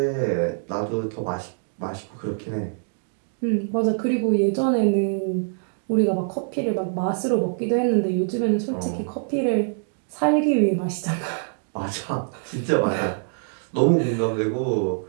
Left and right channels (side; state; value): left; silent; digital silence